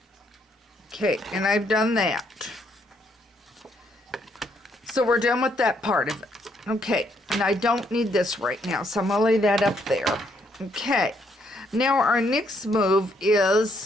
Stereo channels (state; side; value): normal; both; correlation 0.72